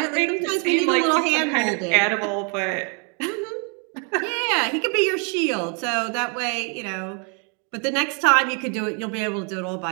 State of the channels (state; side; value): quieter; left; 37.5 dB